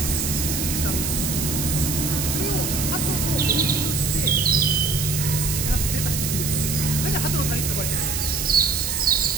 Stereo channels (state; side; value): noise; right; hiss, 2 dB below the sound